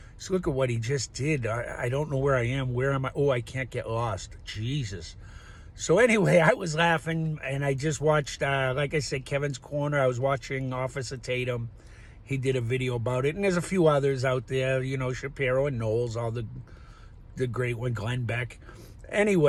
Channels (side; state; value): both; identical; correlation 1.00